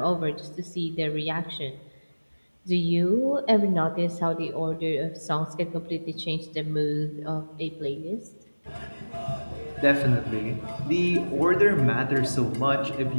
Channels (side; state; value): both; inverted; correlation -1.00